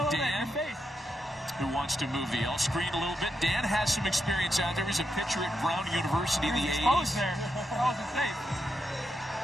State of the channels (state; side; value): normal; both; correlation 0.84